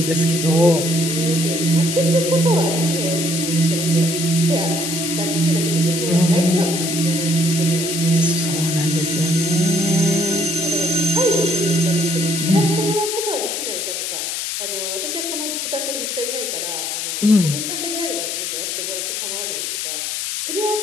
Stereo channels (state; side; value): noise; left; hiss, 3 dB below the sound